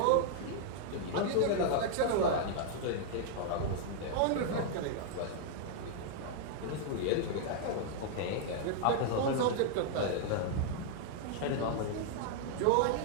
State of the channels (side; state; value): both; different; correlation -0.01